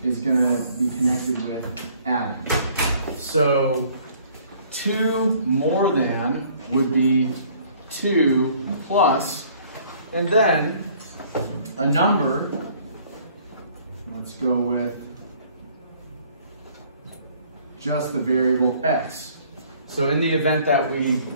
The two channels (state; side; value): inverted; both; correlation -0.58